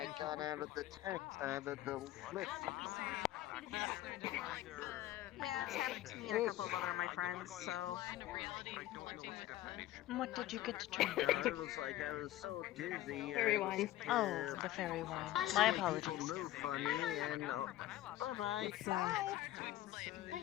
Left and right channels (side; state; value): right; quieter; 14.6 dB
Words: got out of the lift. Yeah, it's happened to me and a couple of other of my friends, so. What did you get to drink? It was like I was so dizzy. Fairy wine. Oh, the fairy wine. My apologies. People move funny and bye-bye.